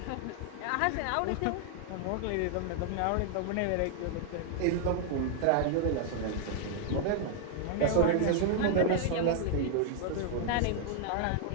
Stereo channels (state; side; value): different; both; correlation 0.00